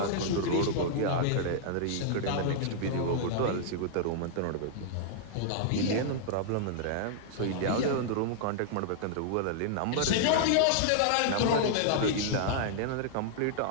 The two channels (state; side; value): different; both; correlation -0.01